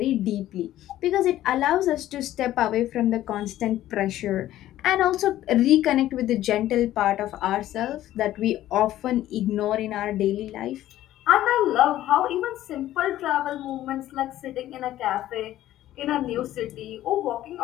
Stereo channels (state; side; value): quieter; right; 13.7 dB